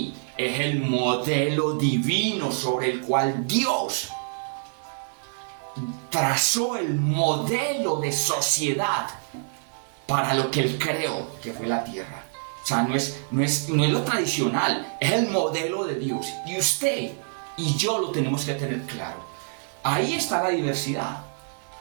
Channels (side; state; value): left; silent; digital silence